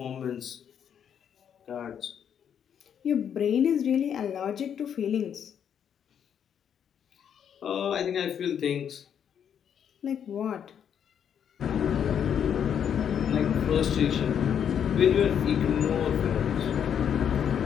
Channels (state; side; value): quieter; right; 8.5 dB